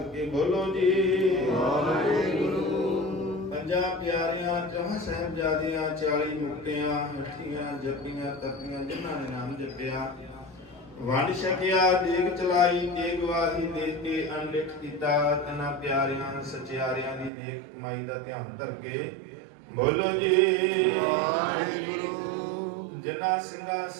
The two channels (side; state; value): left; drops out; at 17.3 s